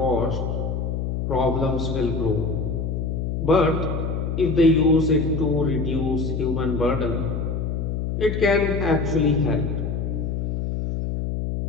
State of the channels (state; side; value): noise; left; hum, 2 dB below the sound